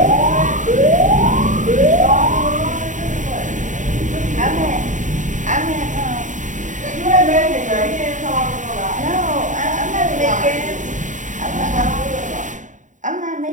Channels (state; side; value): late; left; 0.36 ms